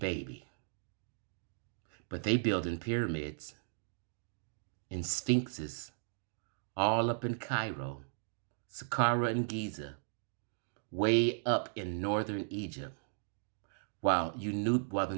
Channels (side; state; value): left; silent; digital silence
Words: But they building pyramids and sphinxes all up in Cairo, Saqqara and Giza, way up in northern Egypt, while the